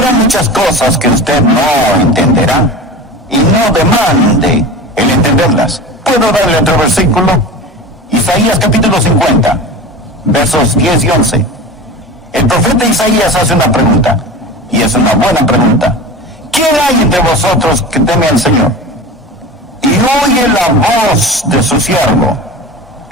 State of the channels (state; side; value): normal; both; correlation 0.32